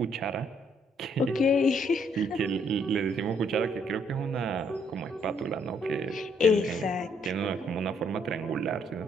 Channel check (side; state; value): both; normal; correlation 0.69